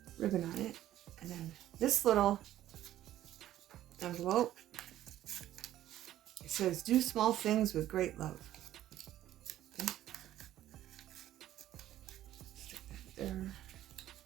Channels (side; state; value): left; quieter; 13.1 dB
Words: ribbon on it. And then this little envelope, it says, do small things with great love. Okay. Stick that there.